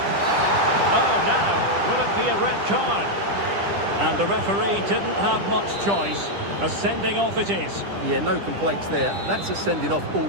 Oh, now, will it be a red card? And the referee didn't have much choice. A sending off it is. Yeah, no complaints there. That's a sending off all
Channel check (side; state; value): left; late; 10 ms